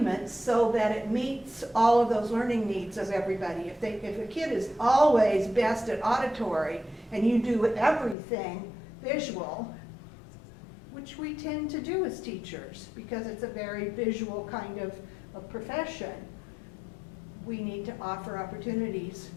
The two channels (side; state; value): right; drops out; at 8.2 s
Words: so that it meets all of those learning needs of everybody. If a kid is always best at auditory and you do everything visual, which we tend to do as teachers because it's a very visual kind of profession, we need to offer opportunities